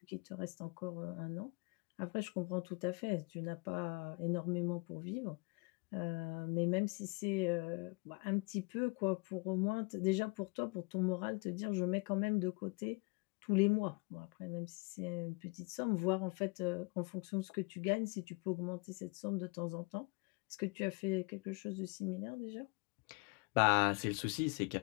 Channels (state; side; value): quieter; right; 30.5 dB